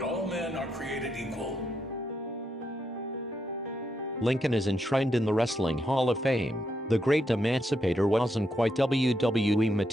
all men are created equal. Lincoln is enshrined in the Wrestling Hall of Fame. The great emancipator wasn't quite WWE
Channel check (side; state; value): both; normal; correlation 0.81